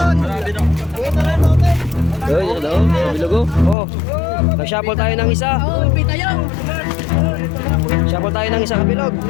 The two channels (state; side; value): drops out; right; at 3.8 s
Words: Uy, hello, kabilugo. Oh, nag-shuffle tayo ng isa. Shuffle tayo ng isa kabilog.